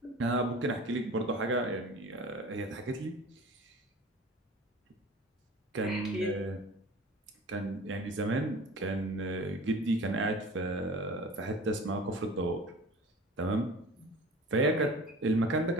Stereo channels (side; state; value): both; normal; correlation 0.40